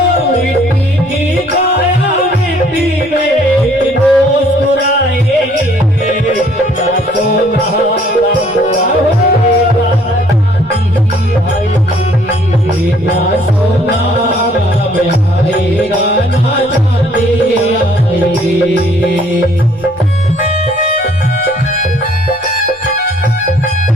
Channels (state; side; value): normal; both; correlation 0.60